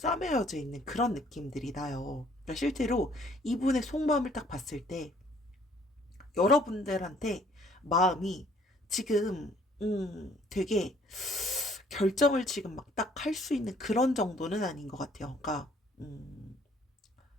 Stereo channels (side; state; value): both; normal; correlation 0.61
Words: 있는 그런 느낌들이 나요. 그러니까 실제로 이분의 속마음을 딱 봤을 때 여러분들한테 마음이 지금 되게 결정을 지금 막 딱 할 수 있는 그런 정도는 아닌 것 같아요. 그러니까